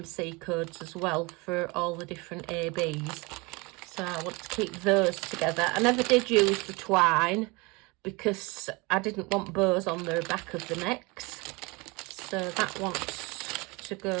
codes as well for all the different ABs. So I want to keep those together. I never did use the twine because I didn't want bows on the back of the necks. So that wants to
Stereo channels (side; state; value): left; quieter; 26.0 dB